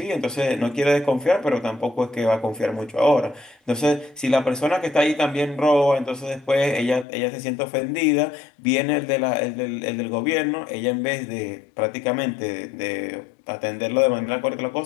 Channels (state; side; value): drops out; right; at 7.1 s